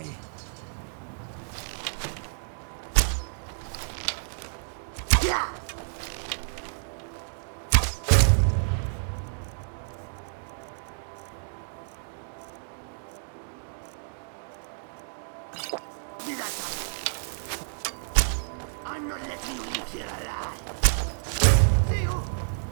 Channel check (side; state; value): left; silent; digital silence